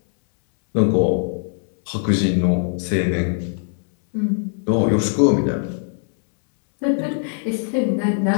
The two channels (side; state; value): right; silent; 65 dB below the other